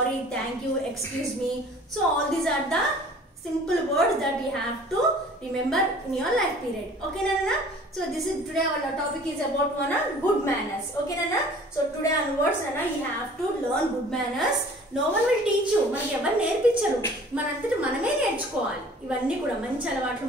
thank you, excuse me. So all these are the simple words that you have to remember in your life period. Okay nana? So this is today our topic is about good manners. Okay nana? So today onwards nana, you have to learn good manners. No one will teach you. మనకి ఎవరు నేర్పించరు, మనంతట మనమే నేర్చుకోవాలి. ఇవన్నీ కూడా మంచి అలవాట్లు,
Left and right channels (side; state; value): both; normal; correlation 0.49